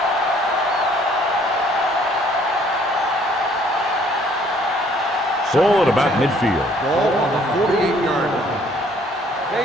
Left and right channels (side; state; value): both; normal; correlation 0.61